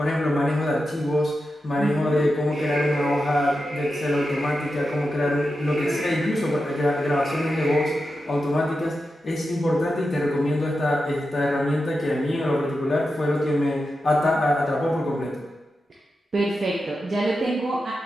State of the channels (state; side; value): normal; both; correlation 0.90